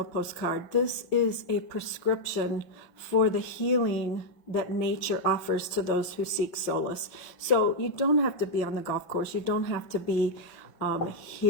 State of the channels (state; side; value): late; right; 5.6 ms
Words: postcard. This is a prescription for the healing that nature offers to those who seek solace. So you don't have to be on the golf course. You don't have to be